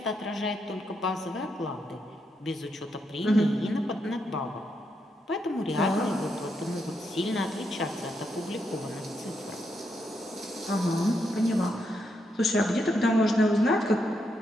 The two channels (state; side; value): normal; both; correlation 0.80